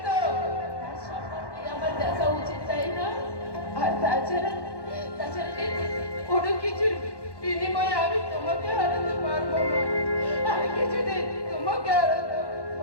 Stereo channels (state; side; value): late; right; 1.1 ms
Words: তো তার সম্পর্কে আমার দেখা উচিত, তাই না? আর তাছাড়া কোনো কিছুর বিনিময়ে আমি তোমাকে হারাতে পারবো না। আমি কিছুদিন তোমাকে হারাতে